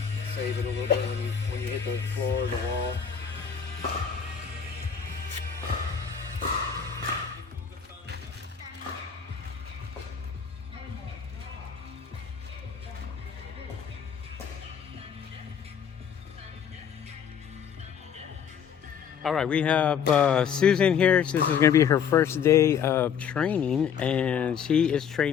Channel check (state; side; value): quieter; right; 7.6 dB